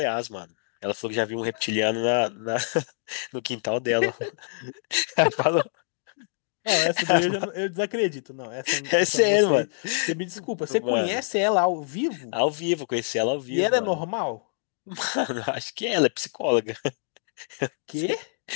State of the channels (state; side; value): silent; right; digital silence